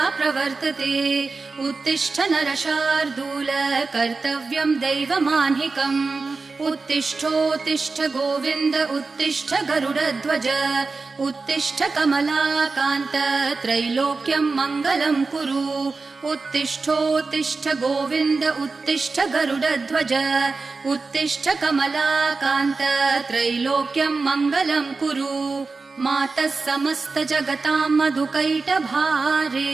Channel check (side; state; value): left; quieter; 4.0 dB